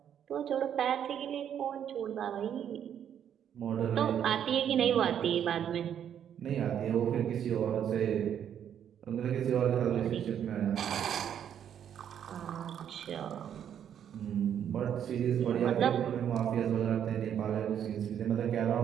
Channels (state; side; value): quieter; left; 9.2 dB